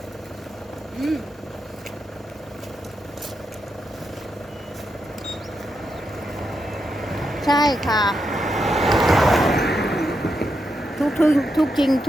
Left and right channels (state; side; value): normal; both; correlation 0.84